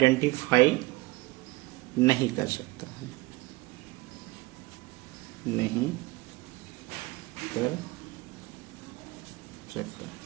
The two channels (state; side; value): quieter; left; 21.8 dB